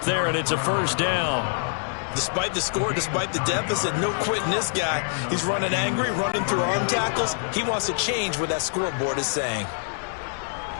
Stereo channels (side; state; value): right; silent; digital silence